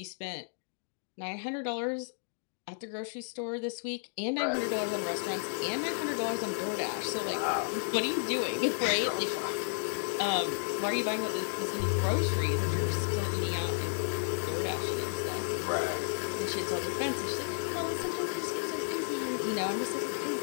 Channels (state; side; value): silent; right; digital silence